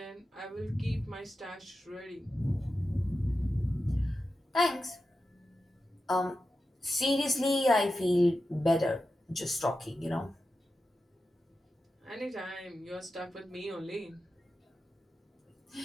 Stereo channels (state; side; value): normal; both; correlation 0.91